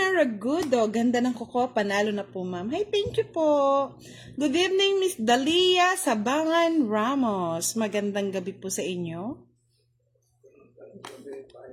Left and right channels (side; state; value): both; identical; correlation 1.00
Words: Ragudo, ganda ng kuko, panalo na po ma'am. Hi, thank you po. Good evening Miss Dalia Sabangan Ramos, magandang gabi po sa inyo.